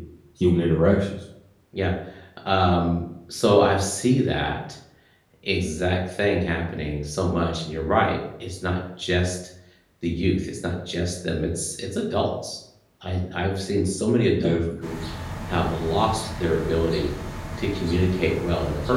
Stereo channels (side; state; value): both; identical; correlation 1.00